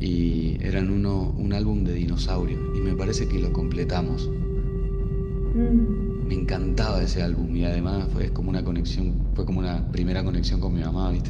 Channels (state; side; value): identical; both; correlation 1.00